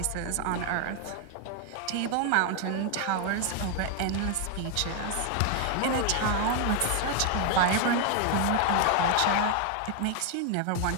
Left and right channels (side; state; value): both; different; correlation 0.00